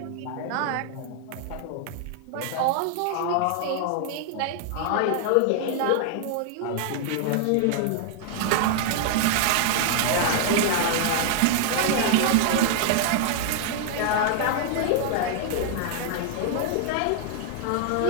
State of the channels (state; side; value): different; both; correlation 0.00